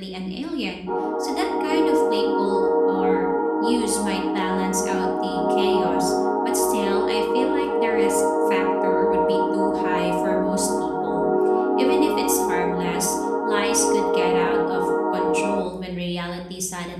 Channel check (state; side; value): identical; both; correlation 1.00